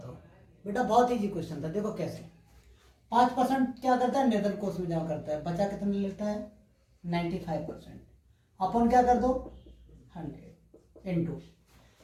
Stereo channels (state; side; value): identical; both; correlation 1.00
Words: बेटा बहुत इजी क्वेश्चन था। देखो कैसे। 5% क्या करता है? नगद कोष में जमा करता है। बचा कितना लेता है? 95%। अपन क्या कर दो? 100 इंटू